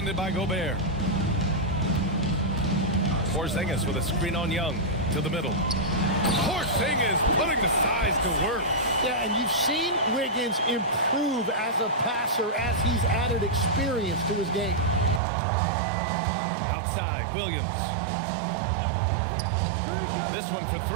by Gobert. Porzingis with a screen on Young. To the middle. Porzingis putting the size to work. Yeah, and you've seen Wiggins improve as a passer as he's added experience to his game. Outside, Williams. This one for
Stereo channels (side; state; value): left; drops out; at 15.2 s